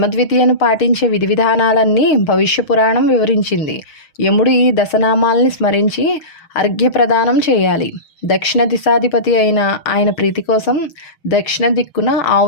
పాటించే విధి విధానాలన్నీ భవిష్య పురాణం వివరించింది. యముడు ఈ దశనామాల్ని స్మరించి అర్ఘ్యప్రదానం చేయాలి. దక్షిణ దిశాధిపతి అయిన ఆయన ప్రీతి కోసం దక్షిణ దిక్కున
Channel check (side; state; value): right; late; 6.3 ms